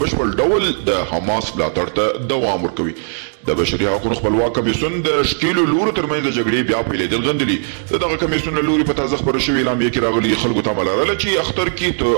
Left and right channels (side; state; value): left; silent; digital silence